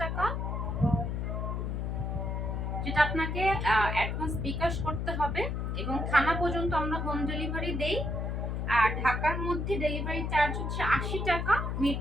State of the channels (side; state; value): left; noise; hum, 1 dB below the sound